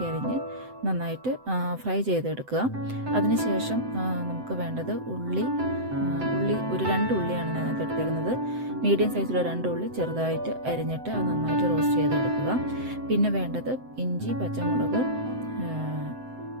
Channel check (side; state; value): left; late; 7.9 ms